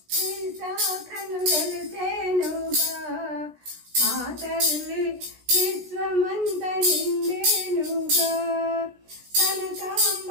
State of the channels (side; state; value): left; late; 16 ms